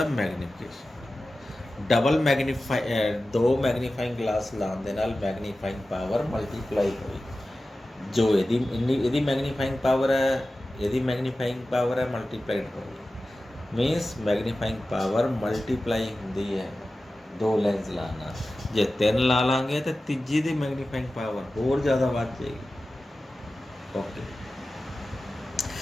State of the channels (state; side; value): normal; both; correlation 0.95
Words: magnification. Double दो मैग्नीफाइंग ग्लास लाने दे नाल मैग्नीफाइंग पावर मल्टीप्लाई हुई। जो यदि मैग्नीफाइंग पावर है, यदि मैग्नीफाइंग पावर है मल्टीप्लाइड होगी, मीनस मैग्नीफाइंग पावर मल्टीप्लाई होंदी है दो लेंस लाना। जे तीन ला लांगे तो तीजी दी मैग्नीफाइंग पावर होर ज़्यादा बढ़ जाएगी। ओके,